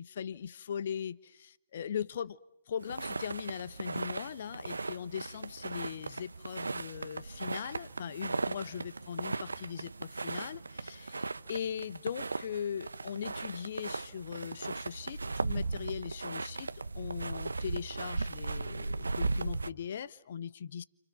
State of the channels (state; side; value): inverted; both; correlation -0.82